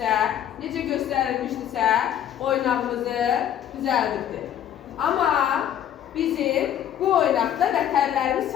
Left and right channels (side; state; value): right; quieter; 10.4 dB